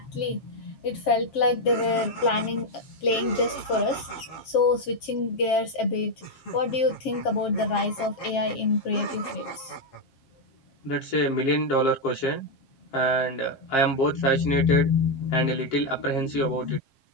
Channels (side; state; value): right; late; 7.5 ms